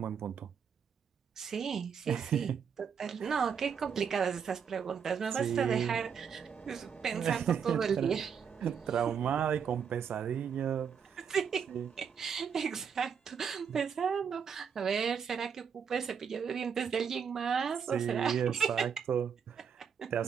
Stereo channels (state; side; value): quieter; left; 7.1 dB